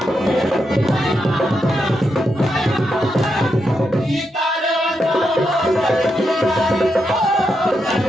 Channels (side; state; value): both; normal; correlation 0.84